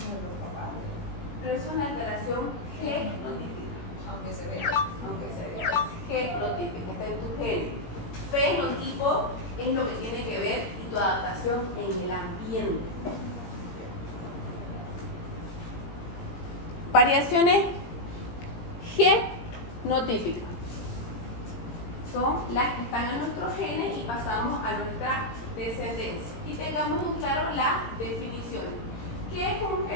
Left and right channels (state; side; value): late; right; 17 ms